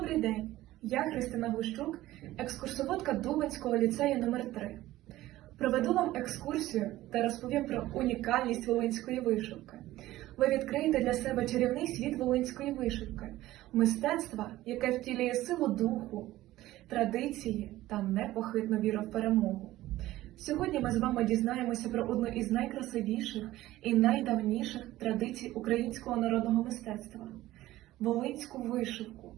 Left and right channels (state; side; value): quieter; left; 15.9 dB